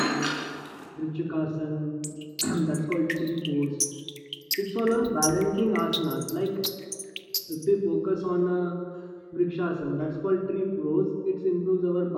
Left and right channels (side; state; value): both; identical; correlation 1.00